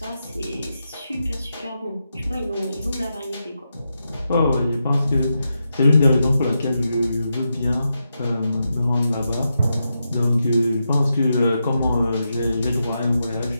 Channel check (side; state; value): both; inverted; correlation -0.87